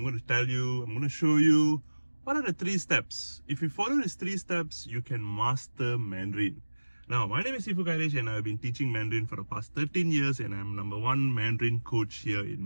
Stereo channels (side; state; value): both; inverted; correlation -1.00